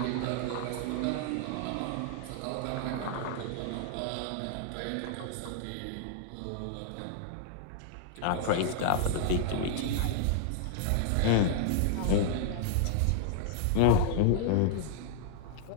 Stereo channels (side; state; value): both; different; correlation -0.01